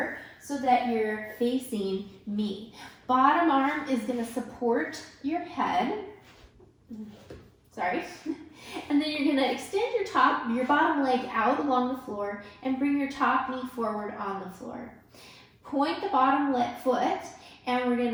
so that you're facing me. Bottom arm is going to support your head. Sorry. And then you're going to extend your bottom leg out along the floor and bring your top knee forward on the floor. Point the bottom foot, and we're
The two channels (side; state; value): both; identical; correlation 1.00